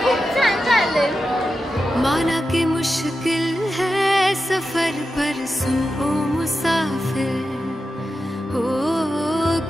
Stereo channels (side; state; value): both; normal; correlation 0.90